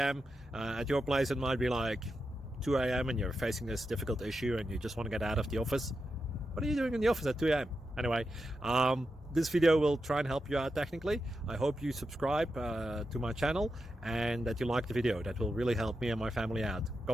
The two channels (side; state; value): both; normal; correlation 0.88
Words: At your place it might be like 2 a.m. and you're facing this difficult issue and you just want to get out of the office. What are you doing in the office at 2 a.m.? Anyway, this video will try and help you out technically. I hope you subscribe to my channel and that you like the video. That will really help me and my family out.